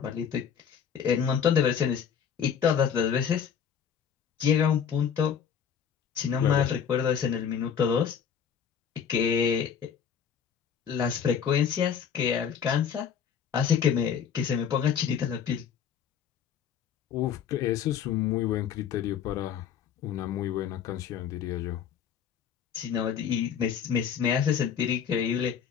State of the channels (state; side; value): quieter; right; 7.7 dB